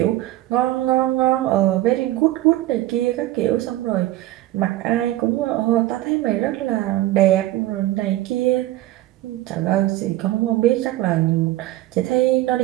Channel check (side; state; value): left; quieter; 15.7 dB